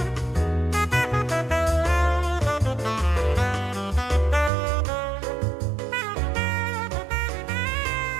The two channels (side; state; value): left; drops out; at 4.5 s